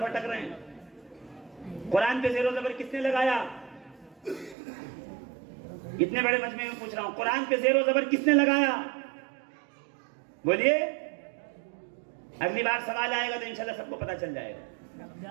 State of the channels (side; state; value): left; drops out; at 4.5 s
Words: رہے ہیں. قرآن پہ زیر و زبر کس نے لگایا؟ اتنے بڑے مجمع میں پوچھ رہا ہوں, قرآن پہ زیر و زبر کس نے لگایا؟ بولیے. اگلی بار سوال آئے گا تو انشاءاللہ سب کو پتہ چل جائے